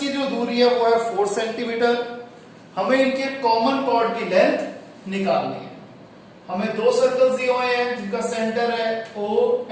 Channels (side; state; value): both; identical; correlation 1.00